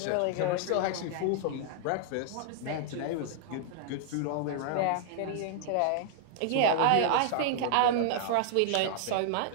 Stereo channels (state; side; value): different; both; correlation 0.00